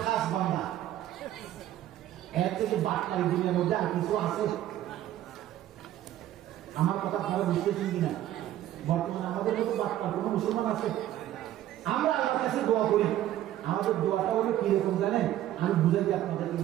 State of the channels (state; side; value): quieter; left; 13.0 dB